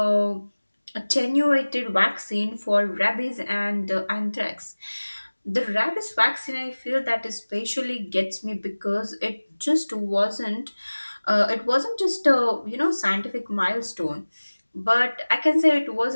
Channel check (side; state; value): both; inverted; correlation -1.00